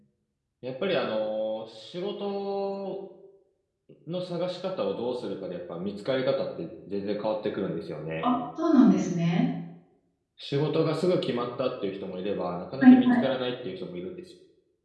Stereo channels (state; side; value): identical; both; correlation 1.00